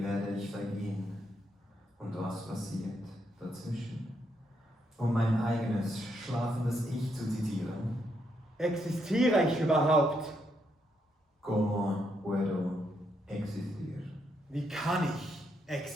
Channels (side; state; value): both; normal; correlation 0.78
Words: werde ich vergehen? Und was passiert dazwischen? Um mein eigenes, schlafendes Ich zu zitieren. Existiere ich überhaupt? Como puedo existir? Wie kann ich